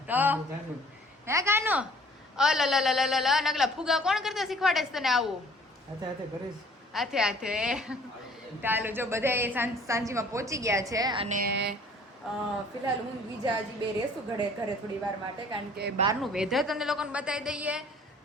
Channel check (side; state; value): both; normal; correlation 0.53